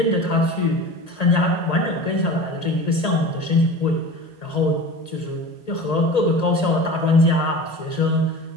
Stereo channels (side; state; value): right; late; 1.9 ms